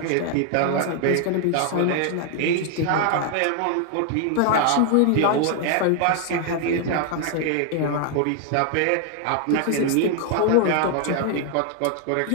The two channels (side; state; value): both; different; correlation 0.00